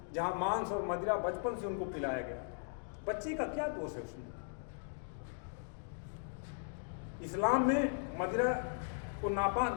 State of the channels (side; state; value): right; silent; digital silence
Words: जहाँ मांस और मदिरा बचपन से उनको पिलाया गया। बच्चे का क्या दोष है उसमें? इस्लाम में मदिरा को नापाक